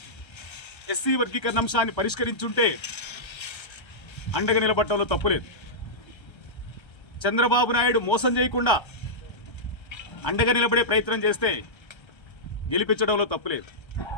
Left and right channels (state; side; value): late; right; 1.3 ms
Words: ఎస్సీ వర్గీకరణ అంశాన్ని పరిష్కరించుంటే అండగా నిలబడటంలో తప్పులేదు. చంద్రబాబు నాయుడు మోసం చేయకుండా అండగా నిలబడే ప్రయత్నం చేస్తే గెలిపించడంలో తప్పులేదు.